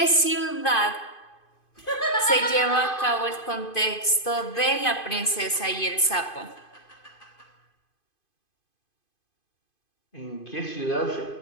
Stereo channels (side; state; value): right; late; 2.5 ms